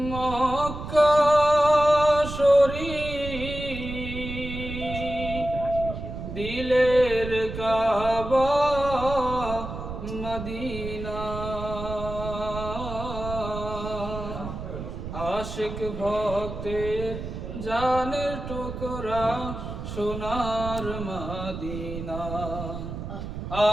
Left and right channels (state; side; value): noise; right; rumble, 8 dB below the sound